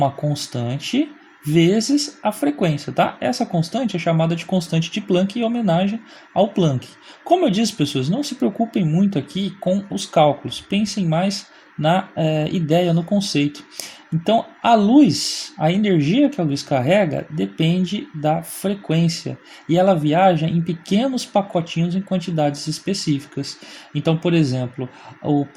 constante vezes a frequência, tá? Essa constante é chamada de constante de Planck em homenagem ao Planck. Como eu disse, pessoas, não se preocupem muito aqui com os cálculos, pensem mais na ideia, no conceito. Então, a luz, a energia que a luz carrega depende da frequência e ela viaja em pequenos pacotinhos em quantidades específicas. Então, por exemplo, o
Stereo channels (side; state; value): both; identical; correlation 1.00